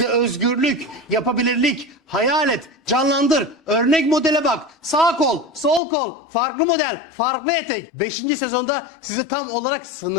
özgürlük, yapabilirlik, hayal et, canlandır, örnek modele bak, sağ kol, sol kol, farklı model, farklı etek. 5. sezonda size tam olarak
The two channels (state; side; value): drops out; right; at 5.8 s